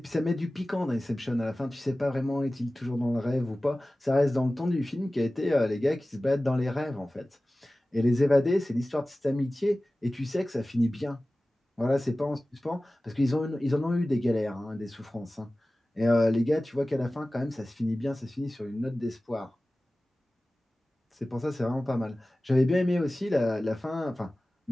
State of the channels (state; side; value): normal; both; correlation 0.97